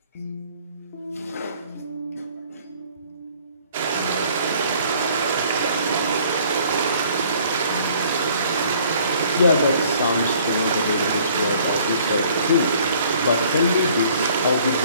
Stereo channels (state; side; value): inverted; both; correlation -0.58